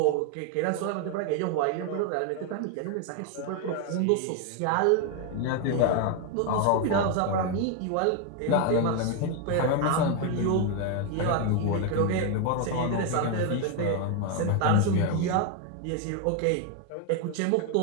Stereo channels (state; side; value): different; both; correlation 0.01